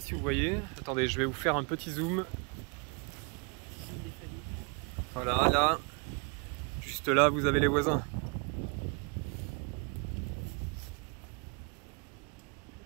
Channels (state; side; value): quieter; left; 33.9 dB